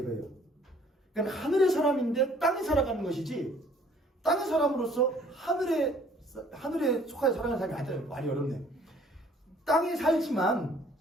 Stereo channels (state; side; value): normal; both; correlation 0.58